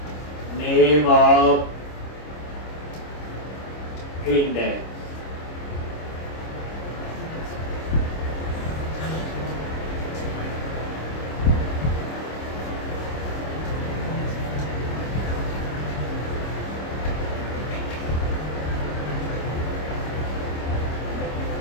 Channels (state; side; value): late; right; 26 ms